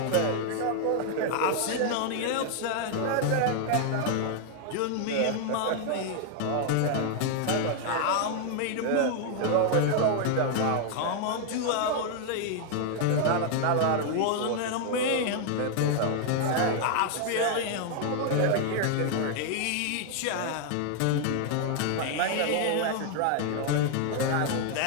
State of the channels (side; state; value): both; different; correlation 0.00